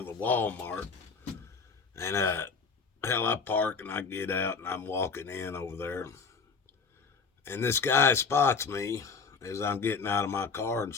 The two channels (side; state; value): right; quieter; 5.0 dB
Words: the Walmart, and hell, I park and I get out and I'm walking in over there, and this guy spots me as I'm getting out of my car and